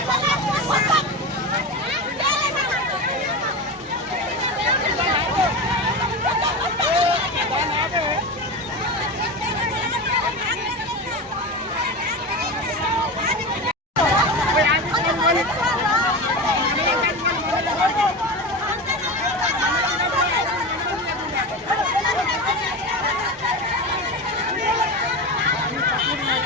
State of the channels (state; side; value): normal; both; correlation 0.23